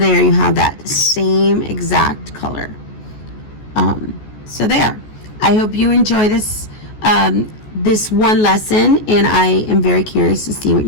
you have that same exact color. So there. I hope you enjoy this this one lesson, and I am very curious to see what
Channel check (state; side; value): late; right; 14 ms